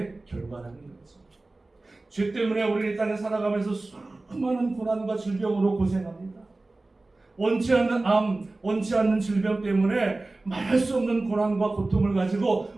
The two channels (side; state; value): left; quieter; 3.1 dB